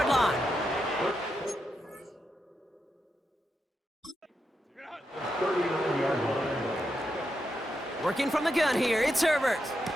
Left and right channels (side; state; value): both; normal; correlation 0.85